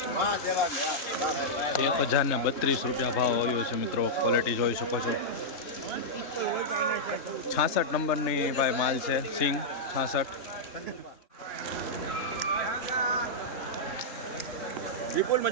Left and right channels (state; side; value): late; right; 3.3 ms